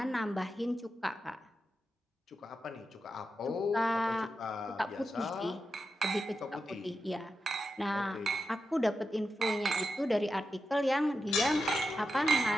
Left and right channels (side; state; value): both; normal; correlation 0.89